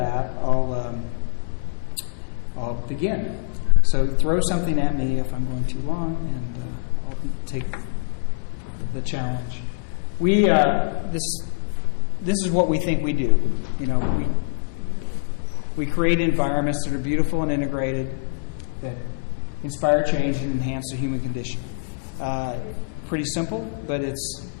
I'll begin. So throw something at me if I'm going too long, and I'll take the challenge. This is what we think we do. We create environments that are beautiful and integrated, that inspire change and enhance the human condition. Pretty simple, but it's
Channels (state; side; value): silent; right; 62 dB below the other